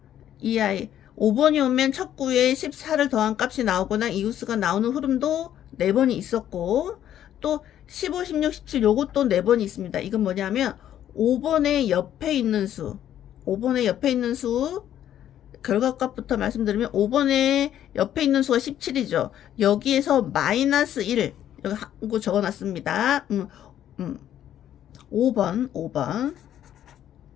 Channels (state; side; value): quieter; right; 11.0 dB